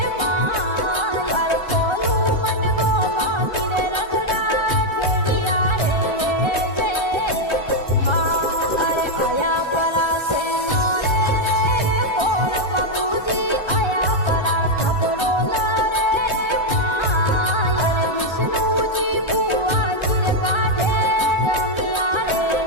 माय अरे कोलू मन गोमा तीरे रखड़ा खेड़िया रे जे हाँ अरे आया परा से नोरे रे बोल बाबूजी आया परा खबरो न रे माय अरे विष्णु जी बुआ जी रे काढे जमिया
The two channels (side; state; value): right; late; 1.3 ms